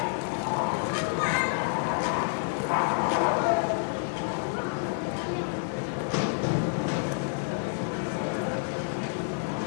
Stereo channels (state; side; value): silent; right; digital silence